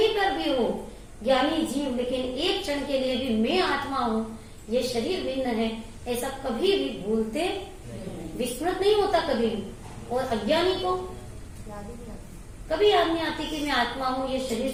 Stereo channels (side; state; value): both; identical; correlation 1.00